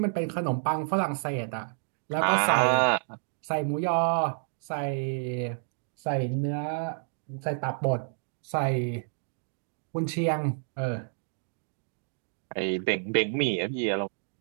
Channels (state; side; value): silent; left; digital silence